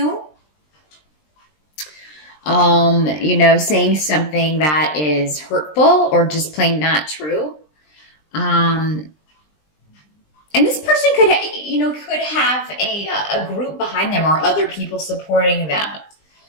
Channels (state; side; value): late; right; 20 ms